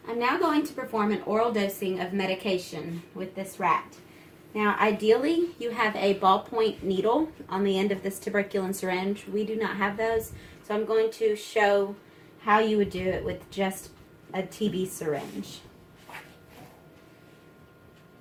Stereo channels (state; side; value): identical; both; correlation 1.00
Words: I'm now going to perform an oral dosing of medication with this rat. Now, ideally, you have a ballpoint needle on the end of this tuberculin syringe. We do not have those, so I'm going to show how you would do it with just a TB syringe.